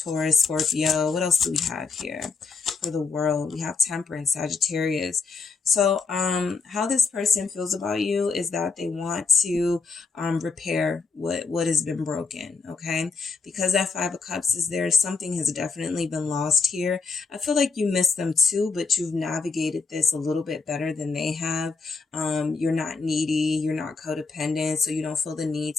Scorpio. What else do we have here for the world? We have Temperance, Sagittarius. So how this person feels about you is that they want to repair what has been broken, okay? Because that Five of Cups is there, something has definitely been lost here. I feel like you miss them too, but you've navigated this a little bit better than they have. You're not needy, you're not codependent, so you don't feel the need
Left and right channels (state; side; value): quieter; right; 4.6 dB